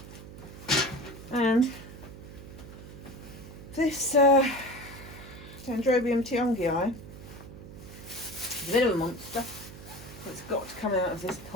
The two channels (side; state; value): right; noise; hum, 15 dB below the sound